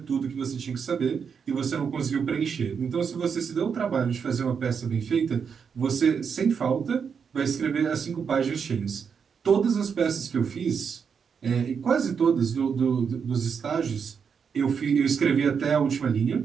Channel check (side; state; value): left; quieter; 6.5 dB